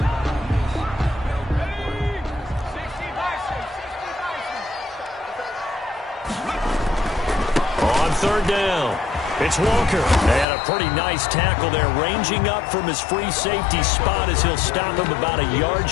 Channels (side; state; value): right; drops out; at 10.5 s